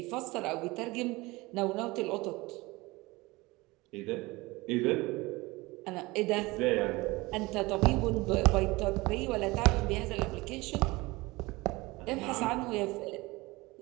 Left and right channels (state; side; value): quieter; left; 22.1 dB